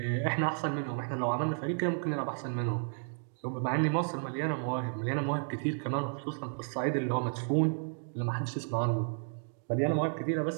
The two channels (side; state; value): left; silent; 56 dB below the other